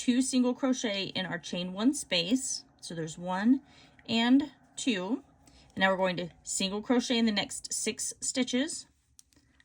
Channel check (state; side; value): identical; both; correlation 1.00